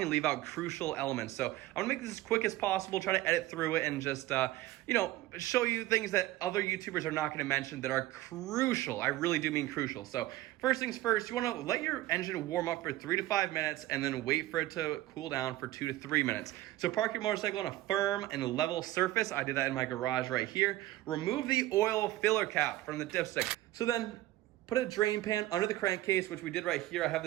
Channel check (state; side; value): quieter; left; 16.3 dB